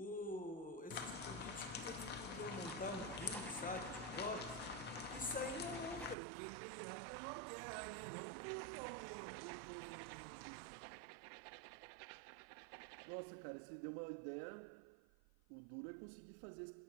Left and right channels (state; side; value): drops out; left; at 6.2 s